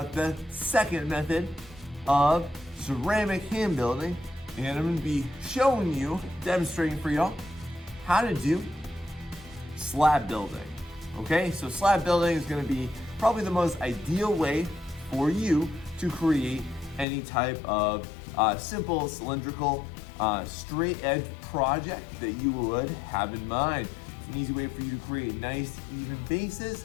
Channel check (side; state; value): right; drops out; at 17.1 s